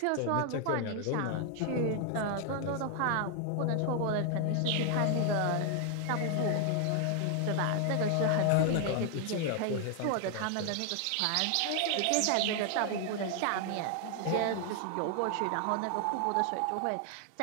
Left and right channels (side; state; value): both; different; correlation 0.00